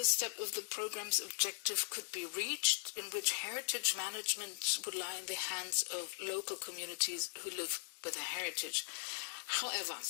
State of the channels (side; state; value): right; silent; digital silence